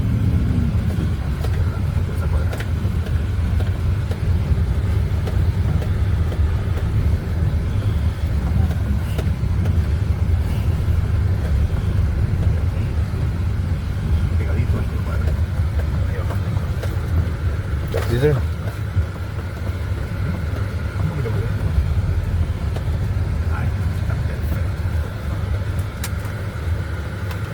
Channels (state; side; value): identical; both; correlation 1.00